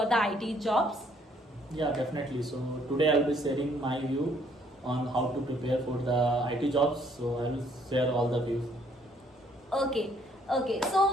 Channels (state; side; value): normal; both; correlation 0.65